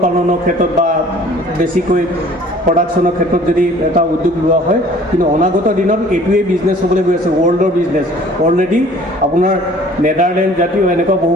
পালনৰ ক্ষেত্ৰত বা বেছিকৈ প্ৰডাকশ্যনৰ ক্ষেত্ৰত যদি এটা উদ্যোগ লোৱা হয় কিন্তু অনাগত দিনত এইটোৱেই বিজনেছ হ'বলৈ গৈ আছে ৱৰ্ল্ডৰ বিজনেছ অলৰেডি আপোনাৰ নেদাৰলেণ্ড জাতীয় এনেকুৱা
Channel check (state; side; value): normal; both; correlation 0.52